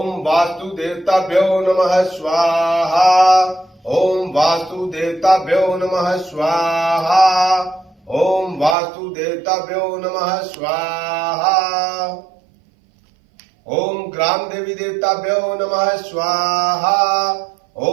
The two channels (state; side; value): drops out; left; at 8.8 s